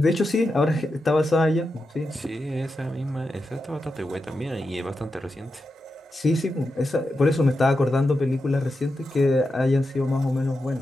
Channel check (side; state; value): both; normal; correlation 0.88